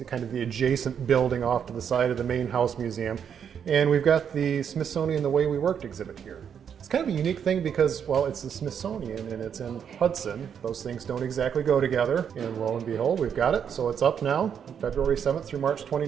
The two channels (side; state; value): left; quieter; 7.9 dB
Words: kind of the adjacent building off to the side of the main house museum. And we've got the Smithsonian The Way We Worked exhibit here. It's kind of a unique thing because, well, it's the Smithsonian and it's in Hudson. Those things don't exactly go together. And lo and behold, we've got it. So it's up now, February 7th through March